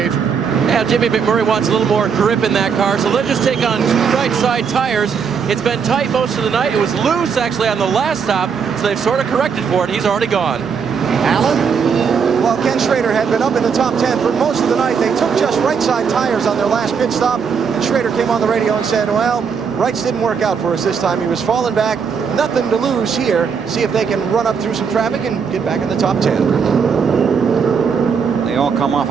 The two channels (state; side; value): quieter; left; 6.3 dB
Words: Yeah, Jimmy McMurray wants a little more grip in that car, so let's just take on 2 right side tires. It's been tight most of the night. It was loose actually on the last stop, so they've sort of corrected for it. He's already gone. Alan? While Ken Schrader had been up in the top 10 for most of the night, they took just right side tires on their last pit stop, and Schrader came on the radio and said, well, rights didn't work out for us this time. He was falling back. Nothing to lose here. See if they can run up through some traffic and get back in the top 10. They all come off